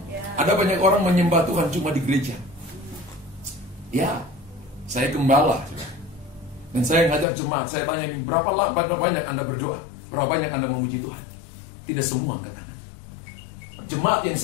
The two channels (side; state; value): right; drops out; at 7.2 s